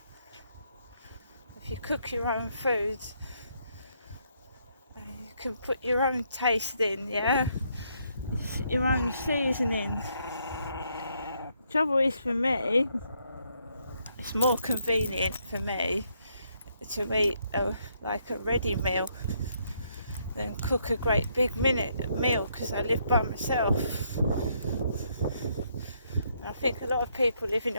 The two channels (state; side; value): inverted; both; correlation -0.73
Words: if you cook your own food, you can put your own taste in, yeah, your own seasoning. Trouble is, for me, it's more convenient for me to eat like a ready meal than cook a great big meal, because I live by myself. And I think a lot of people living